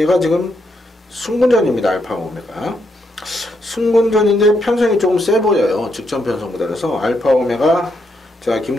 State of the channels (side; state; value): both; normal; correlation 0.78